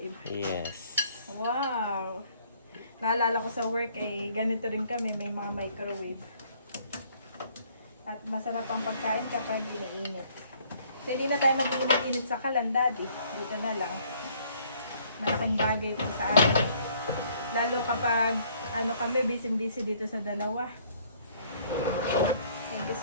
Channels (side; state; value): both; inverted; correlation -0.61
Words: Yes. Wow! Naalala ko sa work ganito rin kami, may mga microwave. At masarap ang pagkain kapag iniinit. So hindi na tayo mag-init sa kalan, daddy. Dito na lang. Malaking bagay ito sa amin. Lalo kapag kami, busy-busy dito sa dalawa. Thank you